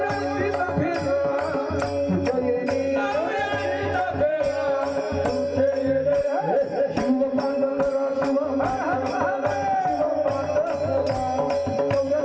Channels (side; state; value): both; identical; correlation 1.00